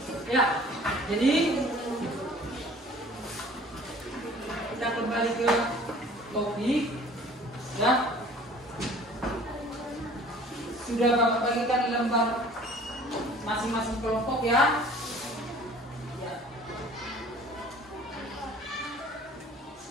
Ya, jadi kita kembali ke topik, ya. Sudah Bapak bagikan lembar masing-masing kelompok, ya. Ya.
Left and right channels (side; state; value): both; normal; correlation 0.49